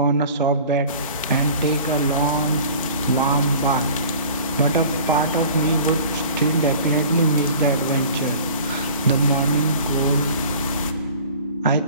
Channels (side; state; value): both; inverted; correlation -0.45